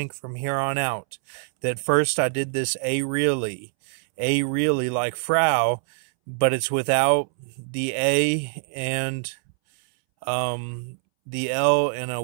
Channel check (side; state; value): left; silent; 62 dB below the other